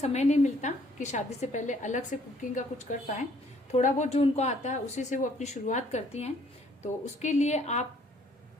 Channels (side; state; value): both; normal; correlation 0.62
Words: नहीं मिलता कि शादी से पहले अलग से कुकिंग का कुछ कर पाए। थोड़ा बहुत जो उनको आता है उसी से वो अपनी शुरुआत करती हैं। तो उसके लिए आप